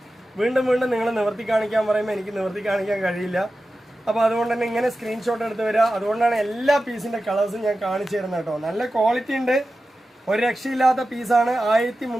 വീണ്ടും വീണ്ടും നിങ്ങൾ നിവർത്തി കാണിക്കാൻ പറയുമ്പോൾ എനിക്ക് നിവർത്തി കാണിക്കാൻ കഴിയില്ല. അപ്പോൾ അതുകൊണ്ട് തന്നെ ഇങ്ങനെ സ്ക്രീൻഷോട്ട് എടുത്ത് വരിക. അതുകൊണ്ടാണ് എല്ലാ പീസിൻ്റെ കളേഴ്സും ഞാൻ കാണിച്ചു തരുന്നത് കേട്ടോ. നല്ല ക്വാളിറ്റി ഉണ്ട്. ഒരു രക്ഷയില്ലാത്ത പീസാണ്.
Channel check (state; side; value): normal; both; correlation 0.93